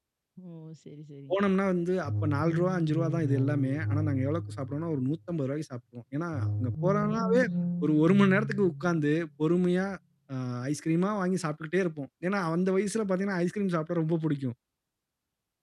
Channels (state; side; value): identical; both; correlation 1.00